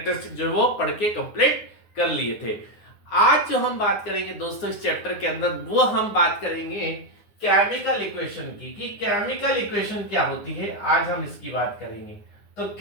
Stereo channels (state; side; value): late; right; 9.7 ms